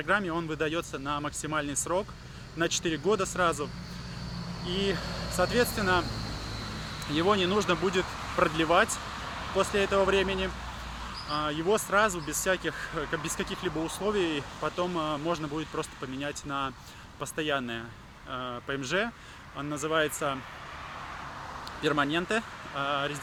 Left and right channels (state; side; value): identical; both; correlation 1.00